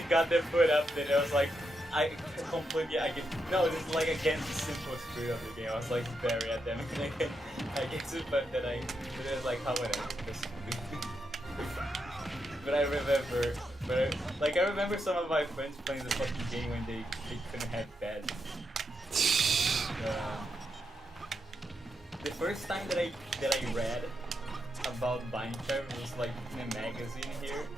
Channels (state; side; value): normal; both; correlation 0.83